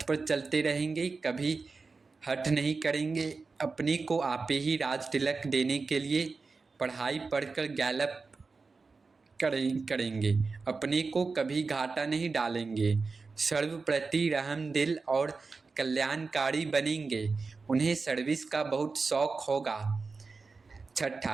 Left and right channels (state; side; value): quieter; left; 4.3 dB